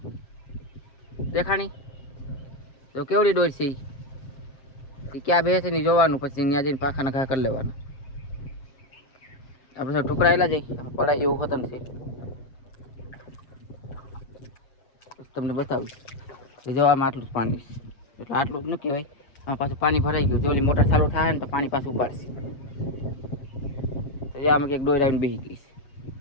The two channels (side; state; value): right; late; 7.5 ms